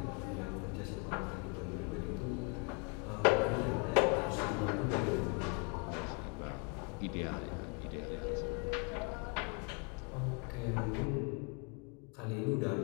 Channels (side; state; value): right; quieter; 33.1 dB